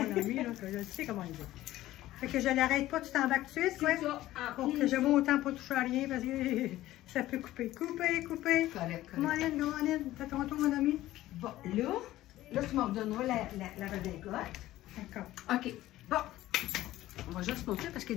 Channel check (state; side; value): quieter; right; 15.3 dB